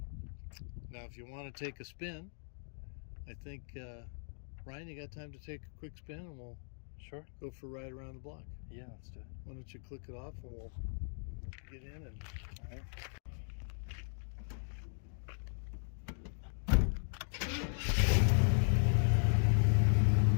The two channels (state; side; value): silent; right; digital silence